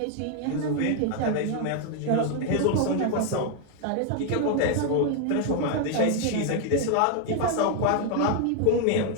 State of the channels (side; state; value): both; different; correlation 0.00